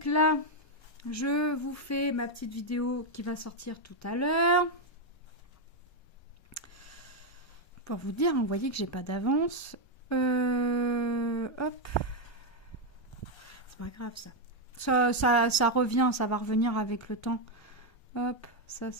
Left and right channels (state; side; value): late; right; 1.3 ms